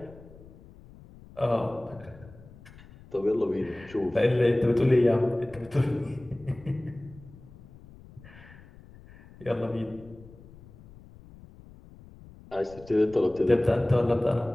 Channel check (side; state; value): left; noise; rumble, 21 dB below the sound